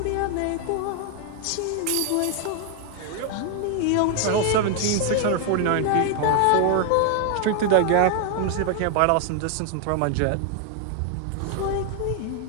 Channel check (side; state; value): both; different; correlation 0.00